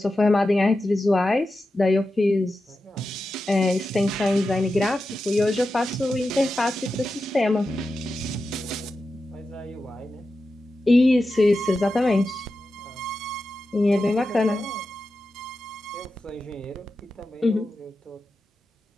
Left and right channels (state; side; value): normal; both; correlation 0.91